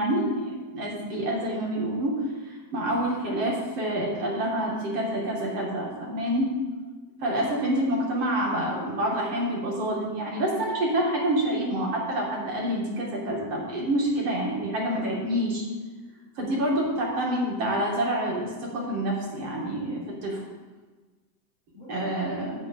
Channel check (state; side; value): late; left; 7.7 ms